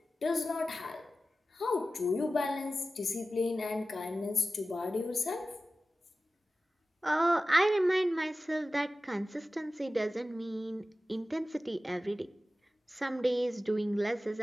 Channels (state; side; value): normal; both; correlation 0.95